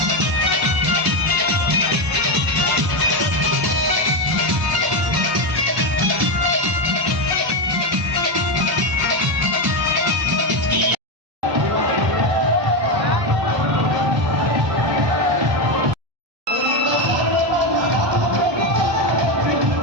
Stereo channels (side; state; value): left; late; 1.0 ms